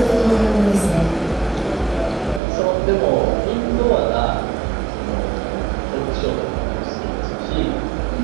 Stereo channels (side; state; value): left; drops out; at 2.4 s